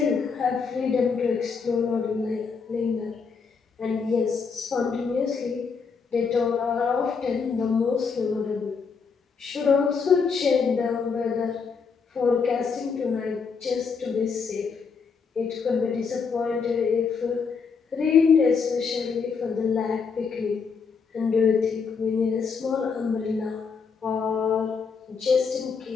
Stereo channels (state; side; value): quieter; right; 5.5 dB